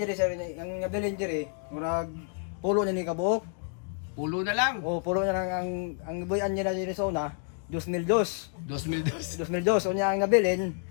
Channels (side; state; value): right; silent; 55 dB below the other